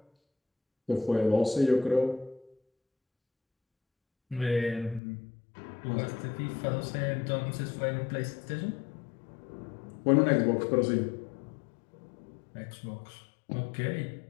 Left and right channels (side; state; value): right; drops out; at 5.0 s